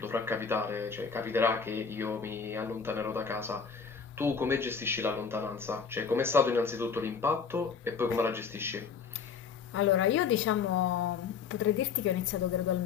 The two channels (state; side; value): quieter; right; 6.1 dB